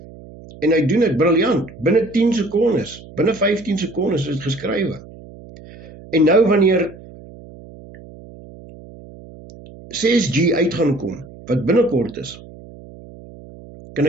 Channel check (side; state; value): right; noise; hum, 19 dB below the sound